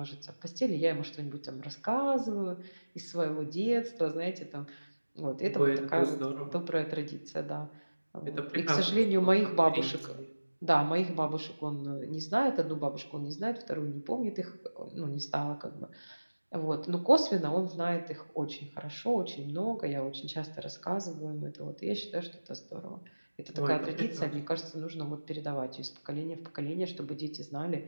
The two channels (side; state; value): both; inverted; correlation -1.00